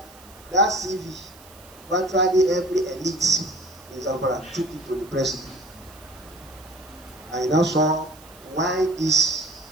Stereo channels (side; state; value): right; noise; hiss, 23 dB below the sound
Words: that CV, virtually every elite in Zamfara took it to the president. I now saw why these